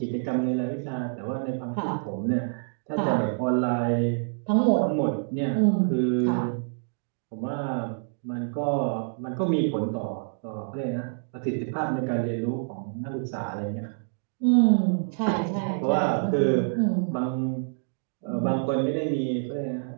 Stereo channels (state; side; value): silent; left; digital silence